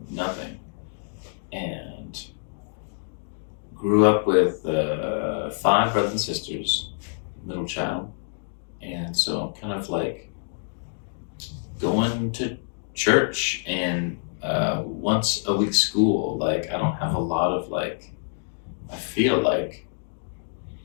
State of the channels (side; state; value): right; silent; digital silence